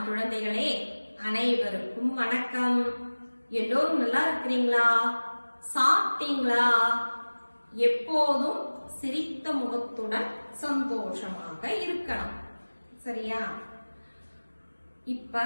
குழந்தைகளே, அனைவருக்கும் வணக்கம். எல்லோரும் நல்லா இருக்கிறீங்களா? சாப்பிட்டீங்களா? எப்போதும் சிரித்த முகத்துடன் சந்தோஷமாக இருக்கணும். சரியா? இப்ப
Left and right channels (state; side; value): inverted; both; correlation -1.00